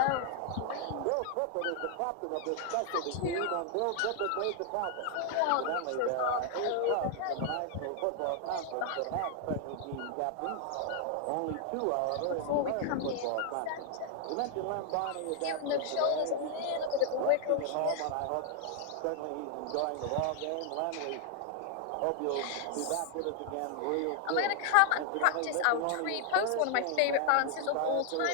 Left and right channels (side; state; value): both; different; correlation 0.00